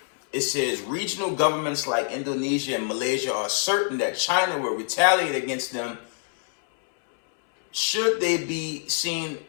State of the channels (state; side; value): silent; right; 62 dB below the other